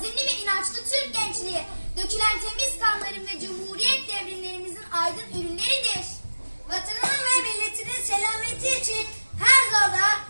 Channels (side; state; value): both; inverted; correlation -1.00